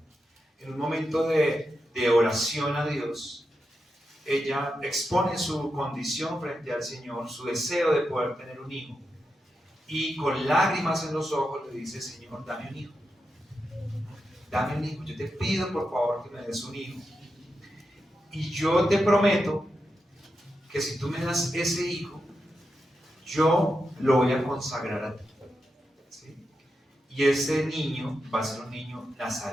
en un momento de oración a Dios, ella expone su condición frente al Señor, su deseo de poder tener un hijo, y con lágrimas en los ojos le dice: Señor, dame un hijo, yo te pido por favor que me des un hijo, y yo te prometo que si tú me das ese hijo, yo lo voy a consagrar a ti, ¿sí? Y ese niño va a ser un niño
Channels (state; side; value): normal; both; correlation 0.87